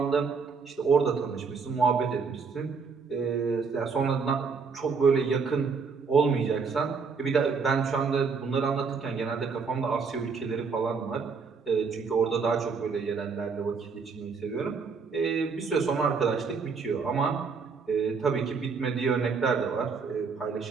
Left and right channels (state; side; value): quieter; left; 5.2 dB